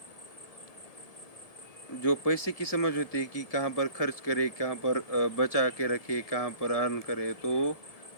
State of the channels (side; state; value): right; late; 1.7 ms